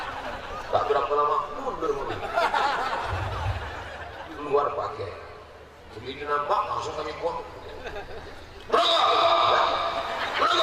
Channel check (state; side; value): identical; both; correlation 1.00